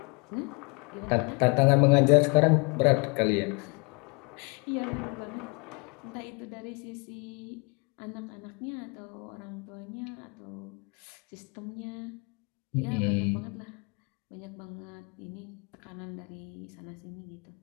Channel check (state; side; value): quieter; right; 31.7 dB